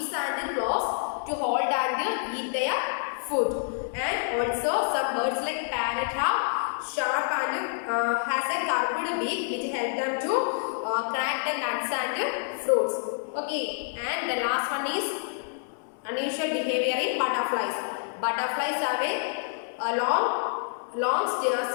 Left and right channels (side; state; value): right; silent; digital silence